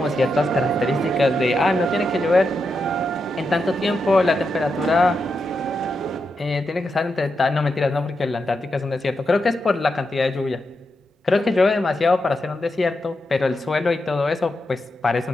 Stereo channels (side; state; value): both; normal; correlation 0.86